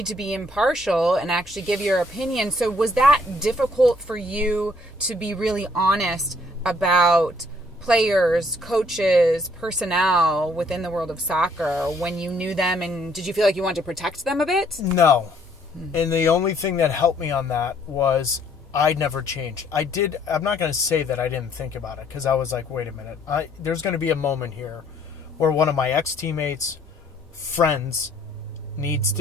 to be impartial and actually give your opinion. So was that difficult for you to be really honest about players, coaches, personnel within the world of soccer when you knew them, and did you feel like you wanted to protect them a bit? No. And the only thing that helped me on that was I never changed. I'm not going to say that I didn't think about it, because I was like, wait a minute. There's going to be a moment here where one of my ex-teammates, friends, needs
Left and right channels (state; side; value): normal; both; correlation 0.64